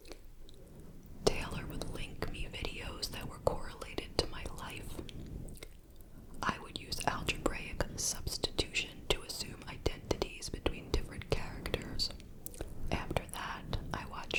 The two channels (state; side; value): identical; both; correlation 1.00